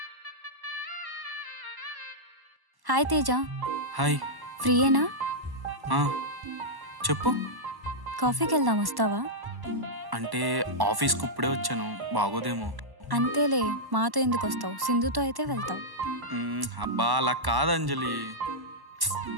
హాయ్ తేజ. హాయ్. ఫ్రీయేనా? చెప్పు. కాఫీకి వెళ్దాం, వస్తావా? అంటే ఆఫీస్కి ఇప్పుడే వచ్చాను, బాగోదేమో. అంతేలే, మాతో ఎందుకు వస్తావు? సింధుతో అయితే వెళ్తావు. అబ్బా అలా కాదు అంజలి.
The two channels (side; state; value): left; late; 1.1 ms